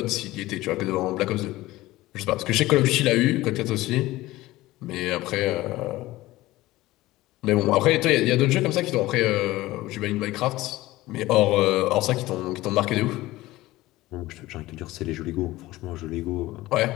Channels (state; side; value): quieter; right; 17.8 dB